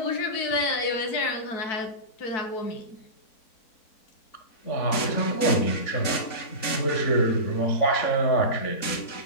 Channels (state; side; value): late; right; 3.8 ms